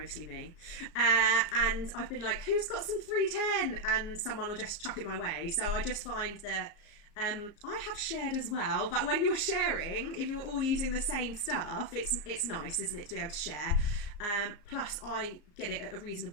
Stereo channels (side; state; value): right; late; 34 ms